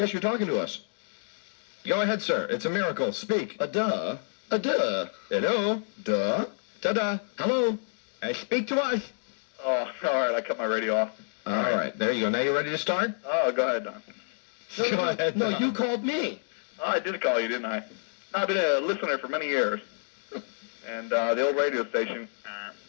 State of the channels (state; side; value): silent; right; digital silence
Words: talking to us. Go ahead, sir. It's a miracle. Speak. A duh. Hello. Duh. Ta-da. Hello. Speak to us. Oh, all right, I cut my radio off. All right, there you go. Now you ready to start? Oh, go ahead, Don. Go ahead. No, Don. you called me. Oh, I did call you, didn't I? I've been a listener for many years. And the old radio station.